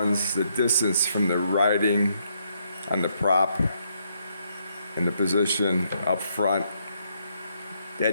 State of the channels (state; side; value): inverted; both; correlation -0.74